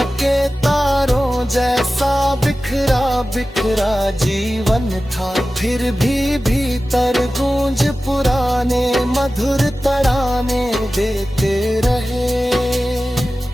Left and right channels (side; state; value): both; normal; correlation 0.95